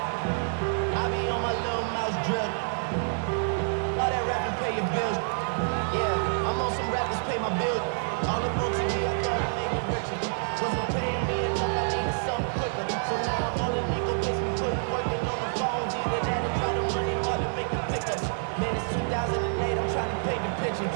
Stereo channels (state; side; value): silent; left; digital silence